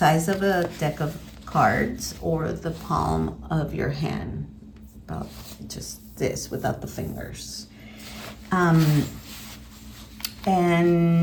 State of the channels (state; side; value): identical; both; correlation 1.00